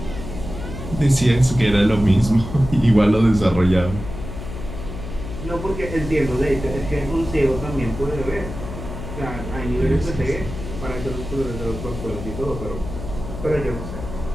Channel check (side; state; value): left; noise; hum, 9 dB below the sound